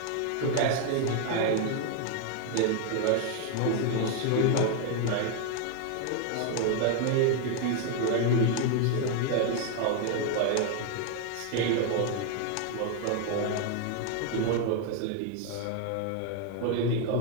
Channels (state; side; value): different; both; correlation 0.01